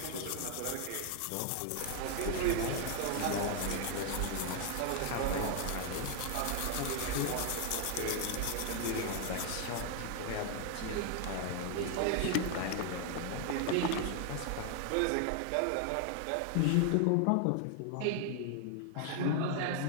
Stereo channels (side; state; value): both; different; correlation 0.00